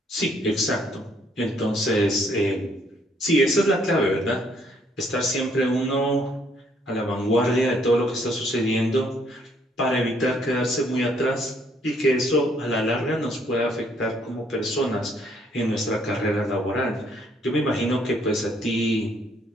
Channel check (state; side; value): normal; both; correlation 0.67